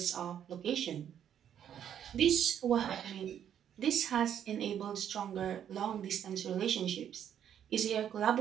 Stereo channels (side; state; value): left; quieter; 9.5 dB